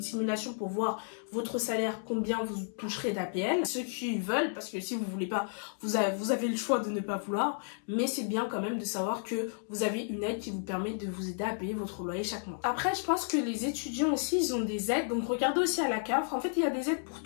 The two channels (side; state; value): right; silent; digital silence